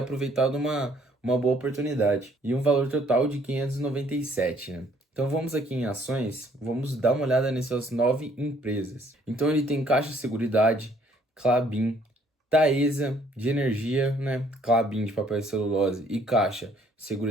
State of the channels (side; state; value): both; normal; correlation 0.62